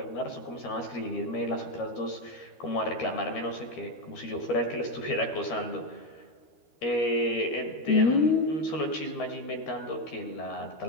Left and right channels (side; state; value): right; late; 13 ms